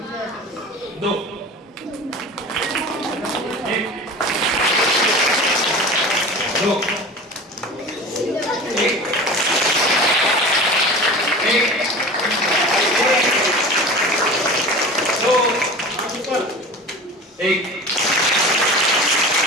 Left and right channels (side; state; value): both; normal; correlation 0.35